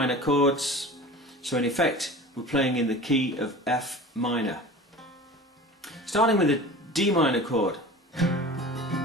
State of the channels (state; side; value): normal; both; correlation 0.37